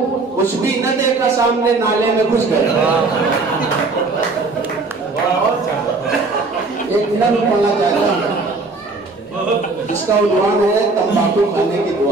कुछ भी न देखा सामने नाले में घुस गए। एक मिनट पढ़ना चाहता हूँ, इसका उन्वान है तंबाकू खाने की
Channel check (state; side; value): quieter; left; 3.7 dB